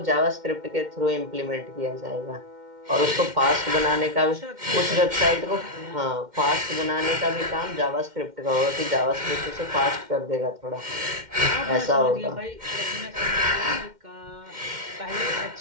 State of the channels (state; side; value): late; left; 2.1 ms